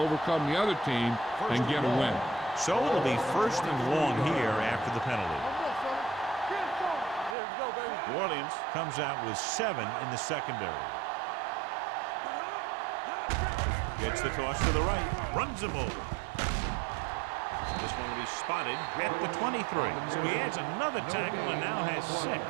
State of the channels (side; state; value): left; drops out; at 7.4 s